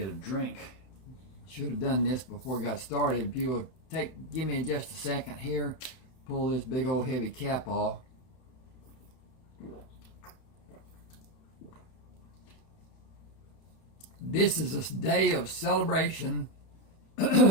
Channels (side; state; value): right; late; 32 ms